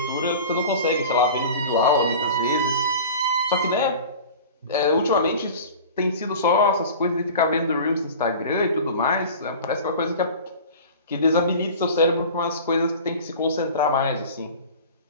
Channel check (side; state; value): both; inverted; correlation -0.38